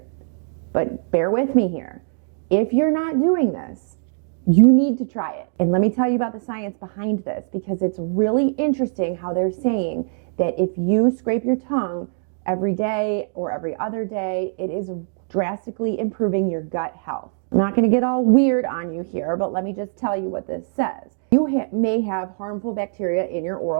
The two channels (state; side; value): silent; left; digital silence